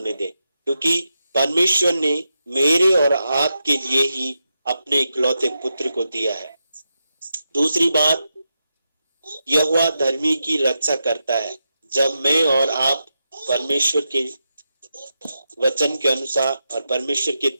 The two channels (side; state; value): both; inverted; correlation -0.87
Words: दे, क्योंकि परमेश्वर ने मेरे और आपके लिए ही अपने इकलौते पुत्र को दिया है। दूसरी बात, यहोवा धर्मी की रक्षा करता है। जब मैं और आप परमेश्वर के वचन के अनुसार और परमेश्वर की